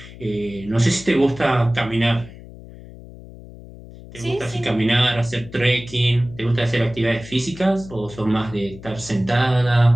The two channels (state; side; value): noise; left; hum, 17 dB below the sound